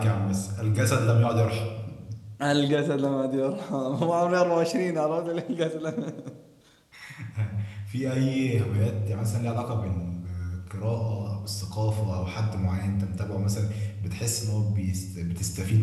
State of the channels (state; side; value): identical; both; correlation 1.00